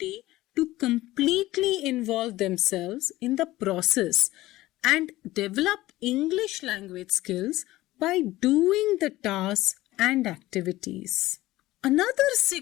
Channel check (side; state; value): right; quieter; 17.2 dB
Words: to completely involve themselves in the process and develop English language skills by doing the tasks and activities. Another